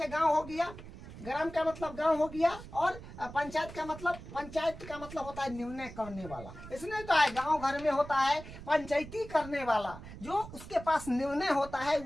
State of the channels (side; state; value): right; noise; rumble, 14 dB below the sound